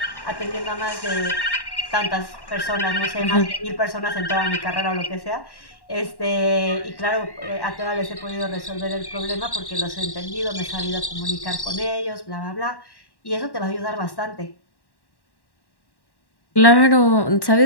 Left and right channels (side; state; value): right; late; 1.1 ms